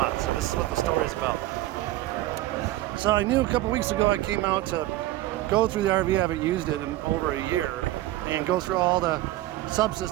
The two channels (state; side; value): quieter; left; 16.0 dB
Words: So this is what the story is about. So I knew a couple weeks ago I came out to go through the RV. I haven't used it in over a year, and go through all the